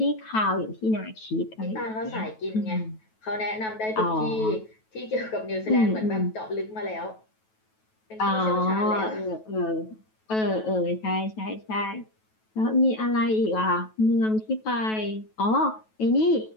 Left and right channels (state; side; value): late; right; 9.2 ms